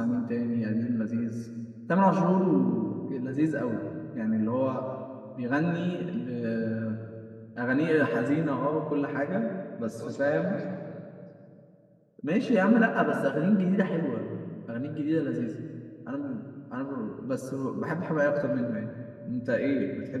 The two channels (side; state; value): both; identical; correlation 1.00